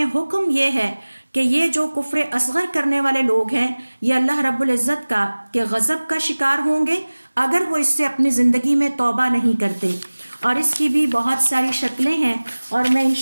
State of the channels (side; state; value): both; inverted; correlation -1.00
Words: حکم یہ ہے کہ یہ جو کفر اصغر کرنے والے لوگ ہیں یہ اللہ رب العزت کا کہ غضب کا شکار ہوں گے اگر وہ اس سے اپنی زندگی میں توبہ نہیں کرتے. اور اس کی بھی بہت ساری شکلیں ہیں اور میں ان